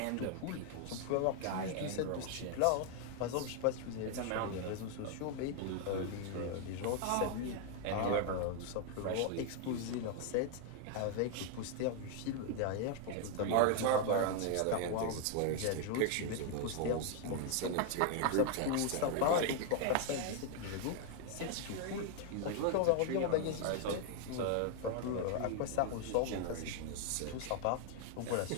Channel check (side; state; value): both; different; correlation 0.00